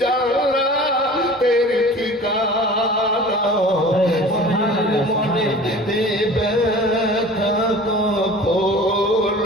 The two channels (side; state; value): both; normal; correlation 0.41